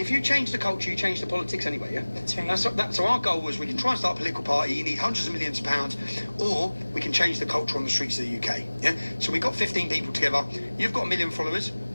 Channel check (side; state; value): both; inverted; correlation -1.00